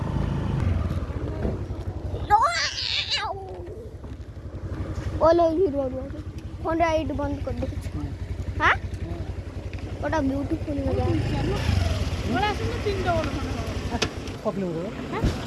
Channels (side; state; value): both; identical; correlation 1.00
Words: बोलो हीरो फोन राइड बंद कर दो हाँ बड़ा ब्यूटीफुल लगा